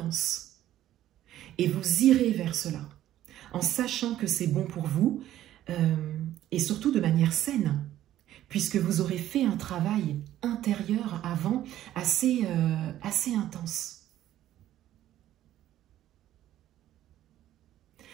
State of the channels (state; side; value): quieter; left; 12.9 dB